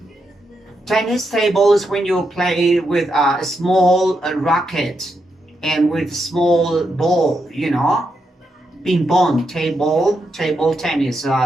Tennis table is when you play with a small racket and with small ball, Ping pong table tennis,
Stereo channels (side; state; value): both; normal; correlation 0.83